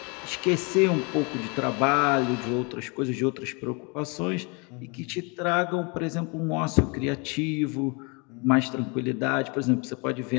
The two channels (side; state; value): right; quieter; 31.4 dB